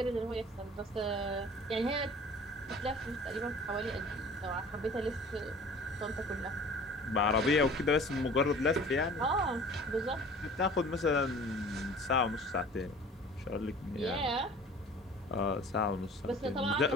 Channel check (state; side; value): normal; both; correlation 0.46